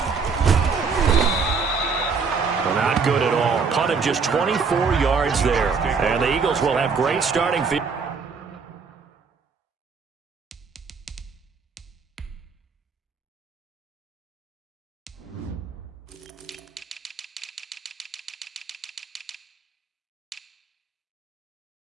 Well, not good at all. Punt of just 24 yards there. And the Eagles will have great starting field.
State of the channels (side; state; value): left; quieter; 5.2 dB